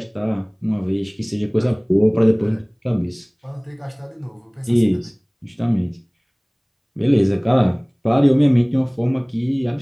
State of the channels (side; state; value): both; identical; correlation 1.00